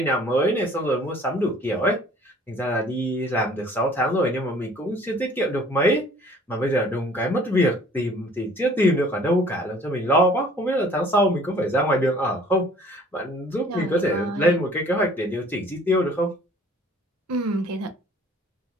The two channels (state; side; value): normal; both; correlation 0.53